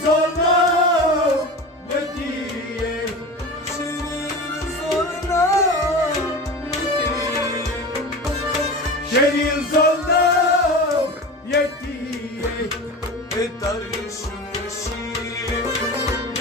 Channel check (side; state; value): both; normal; correlation 0.31